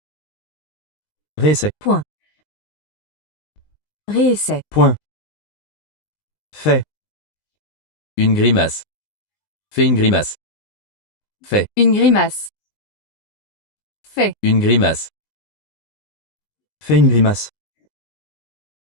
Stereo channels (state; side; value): late; right; 19 ms